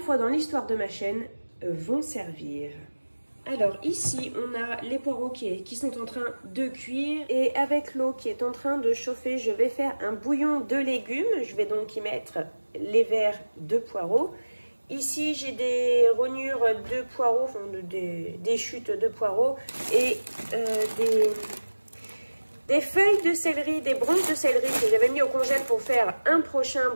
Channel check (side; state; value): both; inverted; correlation -1.00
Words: fois dans l'histoire de ma chaîne, vont servir. Alors ici, on a les poireaux qui sont en train de cuire. Et avec l'eau qui est en train de chauffer, je vais faire un bouillon de légumes. Je vais donc y mettre les verres de poireaux. Ici, j'ai des rognures de poireaux, enfin des chutes de poireaux. Et des feuilles de céleri, des branches de céleri que j'avais mis au congèle pour faire un prochain